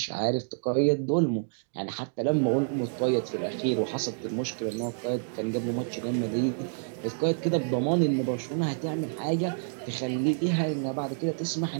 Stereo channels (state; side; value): silent; left; digital silence